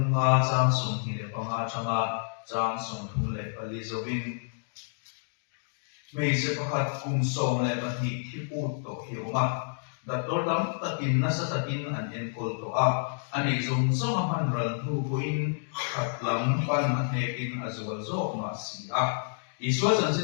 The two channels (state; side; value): silent; right; digital silence